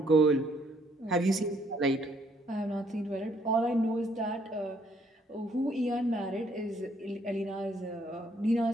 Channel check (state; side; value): normal; both; correlation 0.67